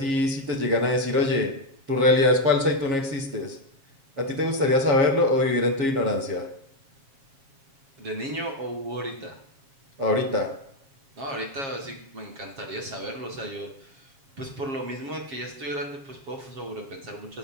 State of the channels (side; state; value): left; late; 7.3 ms